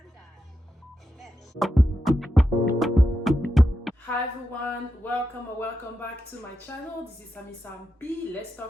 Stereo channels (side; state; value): both; normal; correlation 0.87